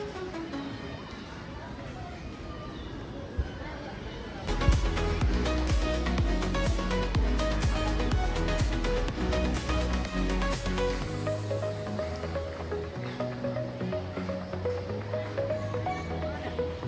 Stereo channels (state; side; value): identical; both; correlation 1.00